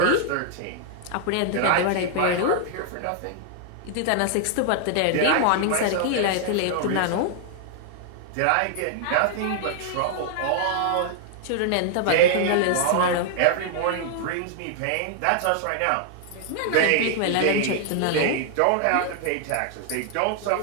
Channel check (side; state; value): both; different; correlation -0.01